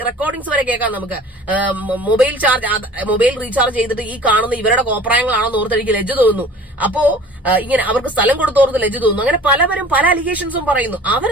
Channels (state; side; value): normal; both; correlation 0.46